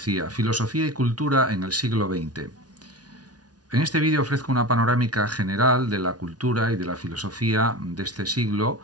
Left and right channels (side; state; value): left; late; 0.69 ms